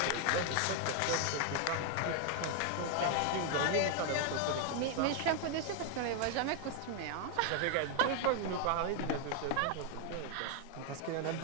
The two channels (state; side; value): different; both; correlation 0.00